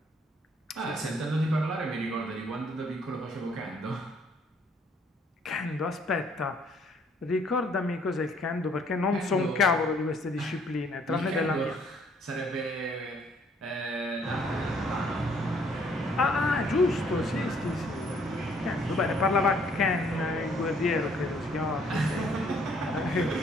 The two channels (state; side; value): normal; both; correlation 0.63